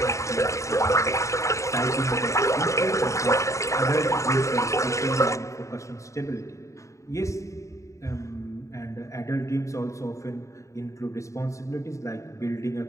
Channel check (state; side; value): late; right; 0.15 ms